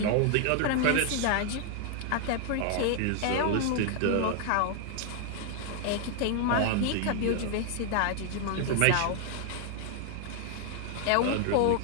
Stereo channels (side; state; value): both; different; correlation 0.00